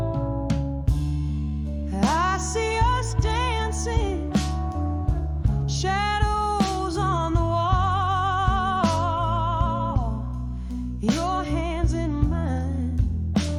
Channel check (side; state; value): both; identical; correlation 1.00